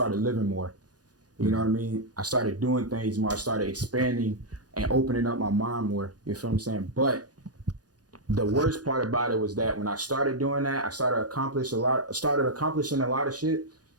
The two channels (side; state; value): left; late; 0.68 ms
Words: living more. You know what I mean? I started doing things more. I started expanding and opening up my mind more. You feel what I'm saying? But the worst part about it was that when I started doing that, I started accomplishing a lot of shit.